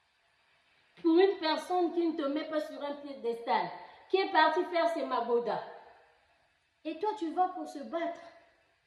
Pour une personne qui ne te met pas sur un piédestal, qui est partie faire ses magodas. Et toi, tu vas pour se battre.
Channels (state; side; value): identical; both; correlation 1.00